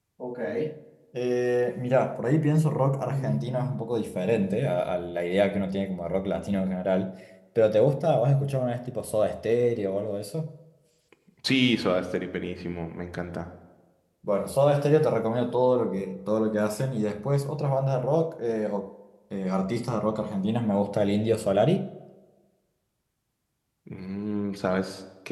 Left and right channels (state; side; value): identical; both; correlation 1.00